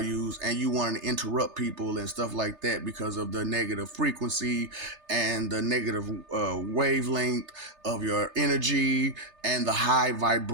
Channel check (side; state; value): left; late; 3.3 ms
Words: and you want to interrupt people and stuff like that because of the negative frequency and the negative wavelength of your energy and the high